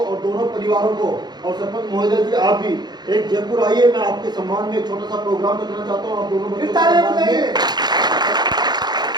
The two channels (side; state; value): left; late; 0.20 ms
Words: दोनों परिवारों को, और सरपंच महोदय जी आप भी एक जयपुर आइए, मैं आपके सम्मान में एक छोटा सा प्रोग्राम रखना चाहता हूँ। आप दोनों बच्चों